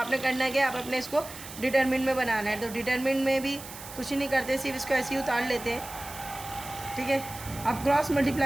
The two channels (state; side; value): noise; right; hiss, 13 dB below the sound